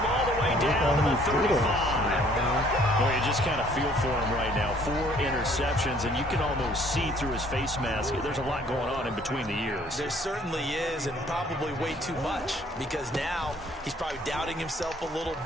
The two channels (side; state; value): both; normal; correlation 0.59